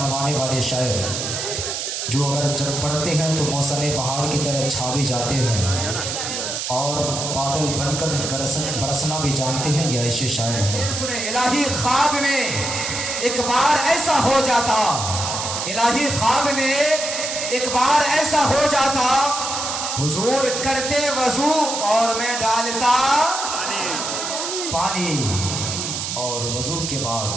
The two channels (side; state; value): right; noise; hiss, 3 dB below the sound